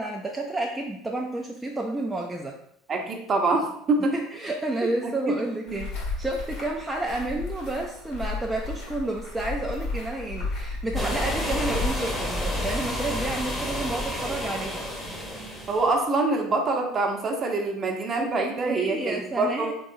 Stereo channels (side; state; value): both; normal; correlation 0.63